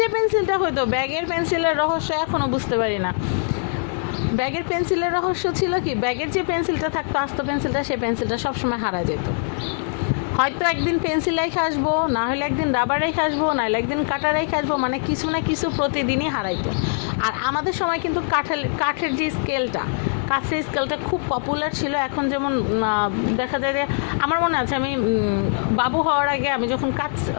যে পেন্সিলটা হতো, ব্যাগের পেন্সিলের রহস্য এখনও বুঝতে পারি না। ব্যাগের পেন্সিলের রহস্য ছিল কি, ব্যাগের যে পেন্সিলটা থাকতো আস্ত পেন্সিলটা, সেই পেন্সিলটা সবসময় হারা যেত। হয়তো একদিন পেন্সিল রেখে আসবো, না হলে একদিন রাবার রেখে আসবো, না হলে একদিন কাটার রেখে আসবো, মানে কিছু না কিছু প্রতিদিনই হারাইতো। আর আমাদের সময় কিন্তু কাঠের যে স্কেলটা খুব পপুলার ছিল। এখন যেমন দেখা যায় যে, আমার মনে আছে আমি বাবু হওয়ার আগে আমি যখন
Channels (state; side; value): silent; right; 57 dB below the other